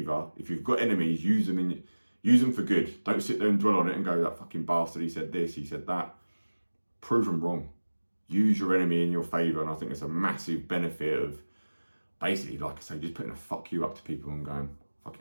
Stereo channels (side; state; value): both; inverted; correlation -1.00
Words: if you've got enemies, use them for good. Don't sit there and dwell on it and go, that fucking bastard, he said this, he said that. Prove them wrong. Use your enemy in your favour, and I think it's a massive benefit of basically, like I say, just putting a fuck you up to people and going,